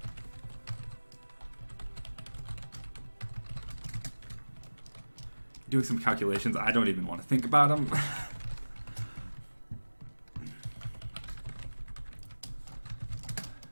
doing some calculations. I don't even want to think about them.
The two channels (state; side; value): inverted; both; correlation -1.00